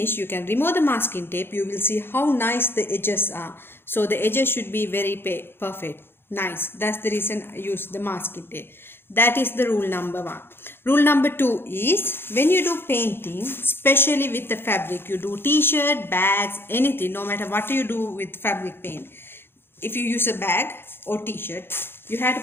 you can remove the masking tape. You will see how nice the edges are. So the edges should be very perfect, nice. That's the reason I use the masking tape. That is the rule number 1. Rule number 2 is when you do painting, especially with the fabric, you do t-shirt, bags, anything, no matter what you do with fabric paint. If you use a bag or t-shirt, you have to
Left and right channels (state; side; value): late; right; 0.11 ms